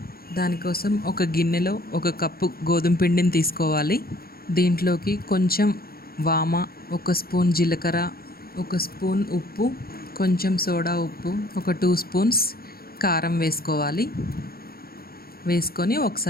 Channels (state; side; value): late; right; 0.44 ms